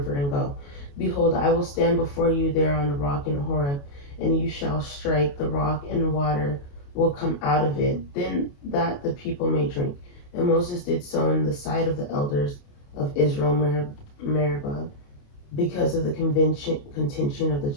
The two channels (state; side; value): late; right; 28 ms